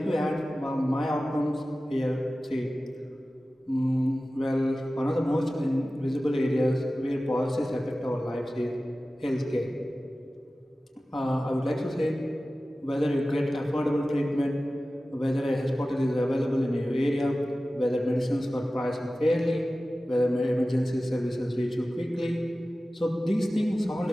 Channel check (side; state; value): both; normal; correlation 0.96